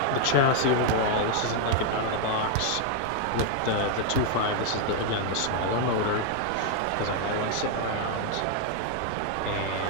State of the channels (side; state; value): both; different; correlation 0.00